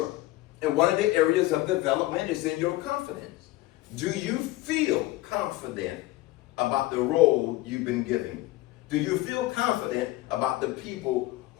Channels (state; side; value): quieter; right; 17.7 dB